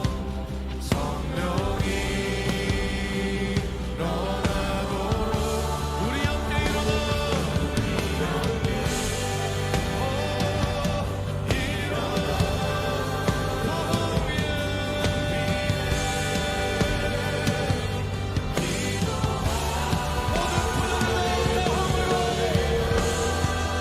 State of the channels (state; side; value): identical; both; correlation 1.00